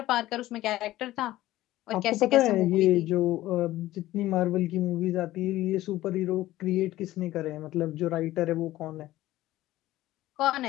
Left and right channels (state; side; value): quieter; right; 15.7 dB